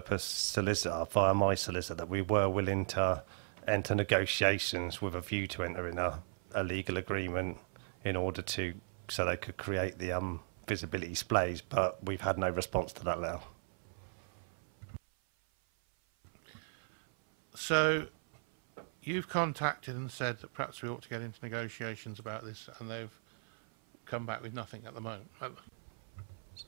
solicitor via my solicitor that we were willing to enter negotiations with a view to entering a legal agreement in order to, so they could create the visibility displays, but we've had no response to that letter. So you've contacted and said that perhaps we ought to get into negotiations about this, and they've come back with nothing at the moment.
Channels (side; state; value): left; silent; 53 dB below the other